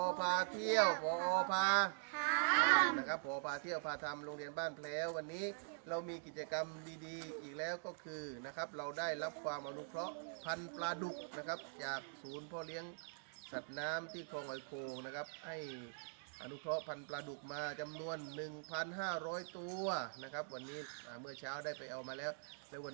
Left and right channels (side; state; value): left; silent; digital silence